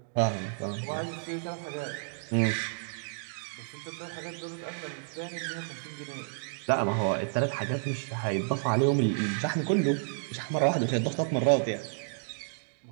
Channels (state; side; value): silent; left; digital silence